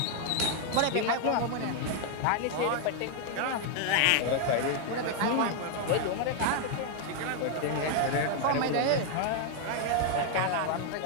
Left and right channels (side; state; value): both; different; correlation 0.00